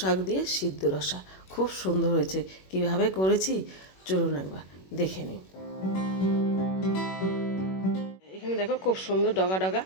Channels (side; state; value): right; late; 21 ms